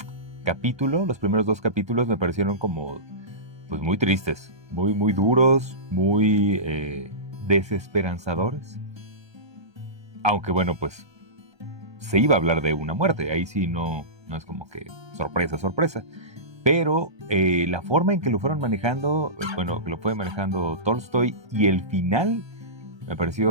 capítulo, los primeros 2 capítulos me parecieron como pues muy tristes, muy duros, muy desesperanzadores. Aunque bueno, pues se iba a hablar de una muerte, ahí sí no es como que sorpresa. Pero la forma en que lo fueron manejando, bueno, que lo fue manejando Tolstoy y el final me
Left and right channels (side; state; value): left; late; 1.3 ms